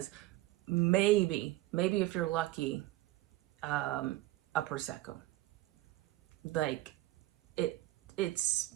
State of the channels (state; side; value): quieter; left; 17.2 dB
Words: maybe if you're lucky, a Prosecco. Like, it's